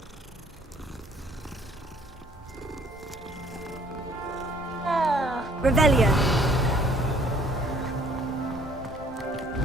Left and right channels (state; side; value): normal; both; correlation 0.58